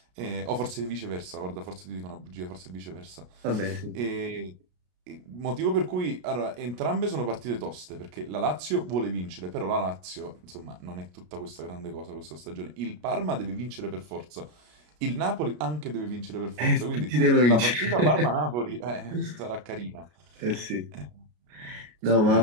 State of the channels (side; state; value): left; late; 33 ms